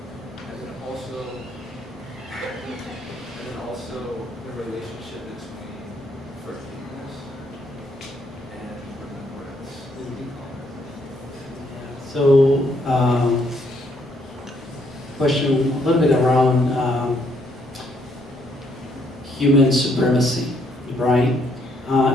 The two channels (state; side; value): normal; both; correlation 0.71